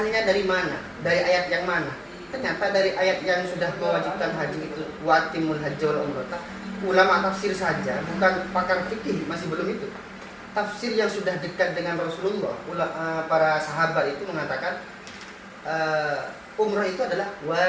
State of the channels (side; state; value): both; identical; correlation 1.00